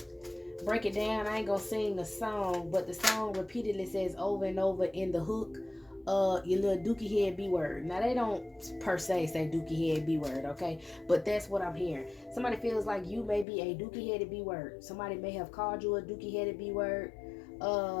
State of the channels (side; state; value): right; drops out; at 13.5 s